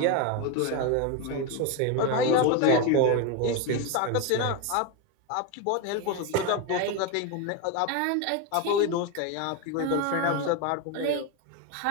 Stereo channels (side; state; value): both; different; correlation 0.02